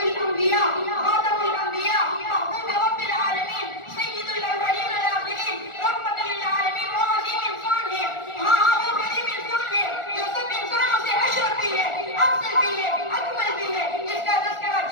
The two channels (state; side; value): late; right; 1.4 ms